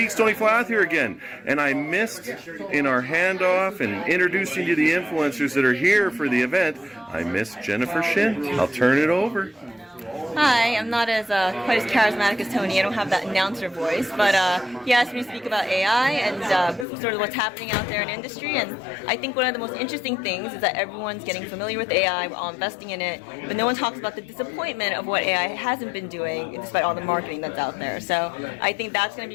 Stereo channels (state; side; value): drops out; right; at 16.9 s